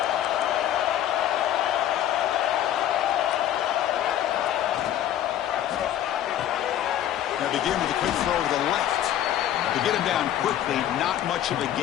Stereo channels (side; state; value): right; quieter; 11.5 dB